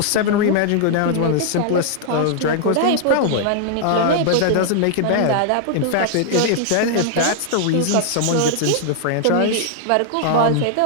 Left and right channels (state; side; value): different; both; correlation -0.01